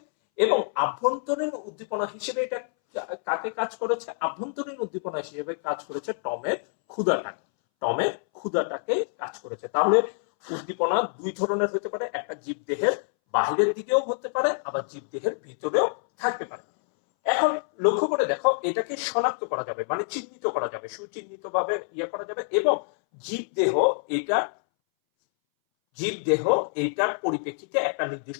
এবং আভ্যন্তরীণ উদ্দীপনা হিসেবে এটা কাকে কাজ করেছে? আভ্যন্তরীণ উদ্দীপনা হিসেবে কাজ করেছে টমের ক্ষুধাটাকে, টমের ক্ষুধাটাকে কাজ করেছে। তাহলে উদ্দীপনা দুই ধরনের হতে পারে, একটা জীবদেহের বাহিরের দিকেও হতে পারে, আবার জীবদেহের ভিতরেও থাকতে পারে। এখন লক্ষ্য করে দেখো, এটাকে শনাক্ত করা যাবে, মানে চিহ্নিত করা যাবে, সুচিহ্নিত ভাবে ইয়ে করা যাবে। এবং জীবদেহ এটা, জীবদেহ এইটার পরিপ্রেক্ষিতে একটা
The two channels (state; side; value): silent; right; 60 dB below the other